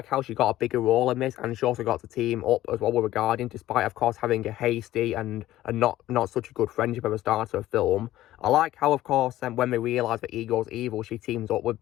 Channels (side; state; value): right; quieter; 14.8 dB